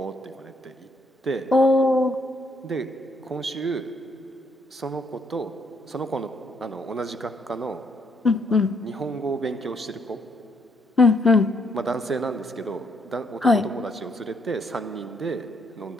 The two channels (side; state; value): both; normal; correlation 0.72